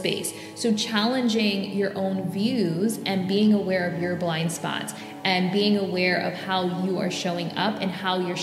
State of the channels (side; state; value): both; identical; correlation 1.00